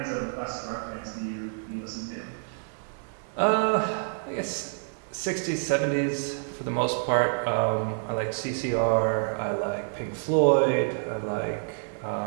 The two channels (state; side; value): silent; left; 59 dB below the other